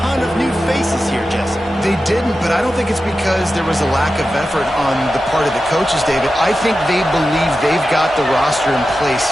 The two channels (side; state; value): both; normal; correlation 0.92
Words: of new faces here, Jesse. They didn't, but I don't think it's because there was a lack of effort on the part of the coaches, David. I think they believe they've got the roster in place